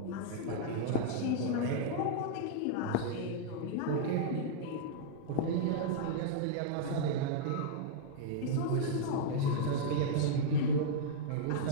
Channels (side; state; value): both; different; correlation -0.02